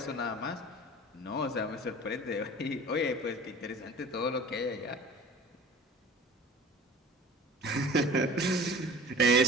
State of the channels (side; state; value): both; normal; correlation 0.41